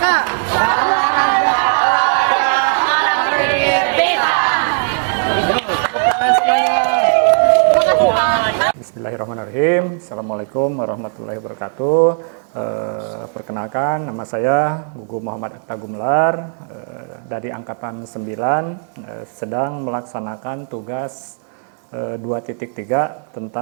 Bismillahirrahmanirrahim. Assalamualaikum warahmatullahi wabarakatuh. Perkenalkan, nama saya Gugu Muhammad Atta Gumelar, dari Angkatan 9, sedang melaksanakan tugas 2.3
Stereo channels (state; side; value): silent; left; digital silence